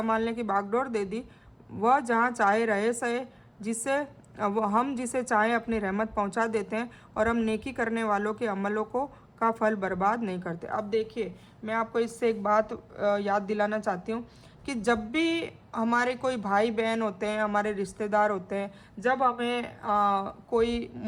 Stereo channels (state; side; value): identical; both; correlation 1.00